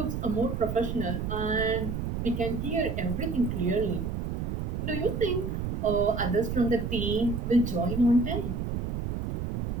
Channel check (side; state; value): right; noise; rumble, 2 dB below the sound